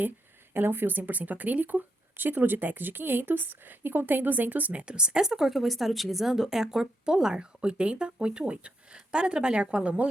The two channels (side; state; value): both; normal; correlation 0.81